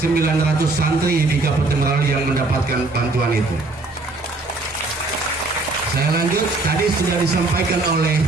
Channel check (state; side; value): quieter; left; 3.2 dB